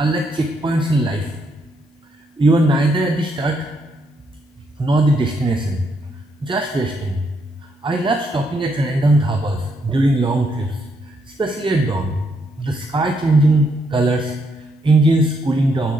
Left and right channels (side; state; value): both; normal; correlation 0.75